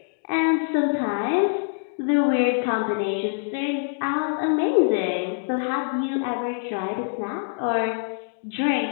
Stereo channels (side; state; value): right; silent; digital silence